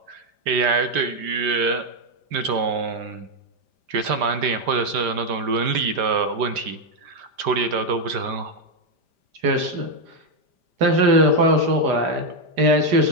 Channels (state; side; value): late; left; 5.0 ms